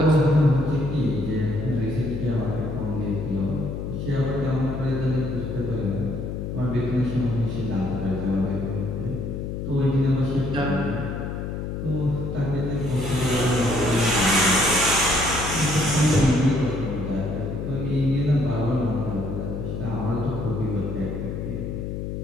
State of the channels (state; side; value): noise; left; hum, 5 dB below the sound